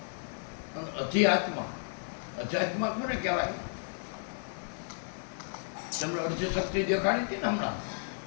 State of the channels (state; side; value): silent; right; 56 dB below the other